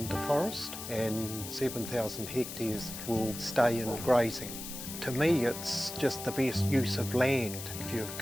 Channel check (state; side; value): noise; left; hiss, 9 dB below the sound